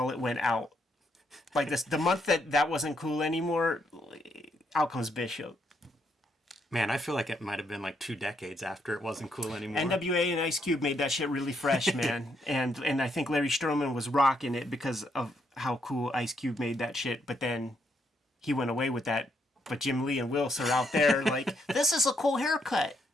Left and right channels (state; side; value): normal; both; correlation 0.75